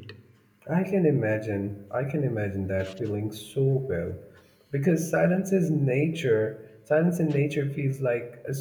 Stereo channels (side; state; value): both; identical; correlation 1.00